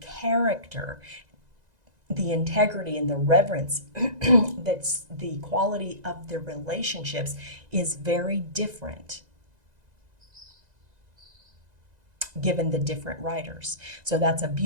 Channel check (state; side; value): late; left; 2.0 ms